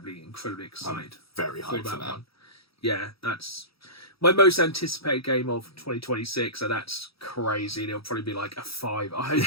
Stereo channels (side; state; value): right; late; 0.76 ms